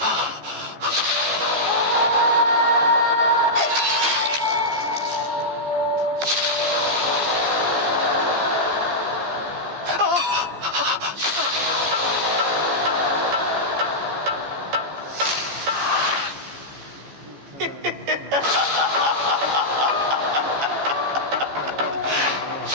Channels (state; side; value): late; left; 14 ms